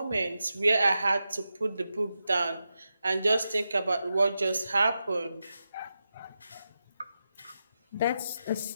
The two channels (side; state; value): both; inverted; correlation -0.89